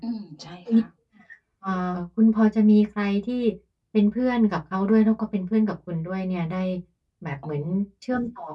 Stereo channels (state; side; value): identical; both; correlation 1.00